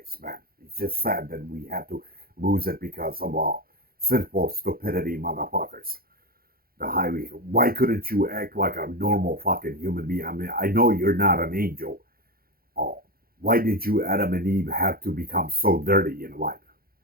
man. It's just sad that we have to lose it because of sinful stupidity, motherfuckers. The highway. Why couldn't you act like a normal fucking human being? I mean, I know you're not an angel. Oh, why did you, Adam and Eve, have to become so dirty in life?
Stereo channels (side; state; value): left; late; 0.43 ms